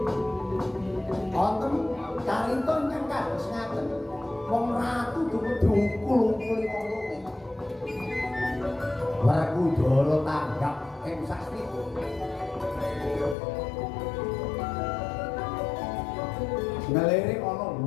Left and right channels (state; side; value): drops out; right; at 13.4 s